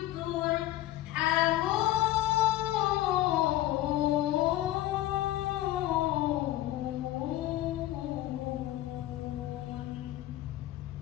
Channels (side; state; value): right; quieter; 15.0 dB